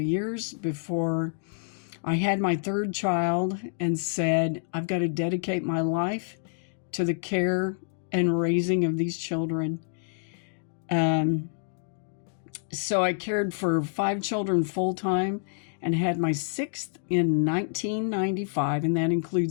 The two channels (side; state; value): right; silent; digital silence